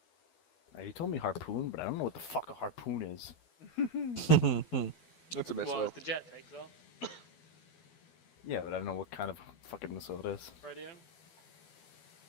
He told me Harpoon, but I don't know what the fuck a Harpoon is. That's a missile. Well, as the jet takes off. Yeah, but I don't know what kind of fucking missile it is. Radio.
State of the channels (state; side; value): late; right; 12 ms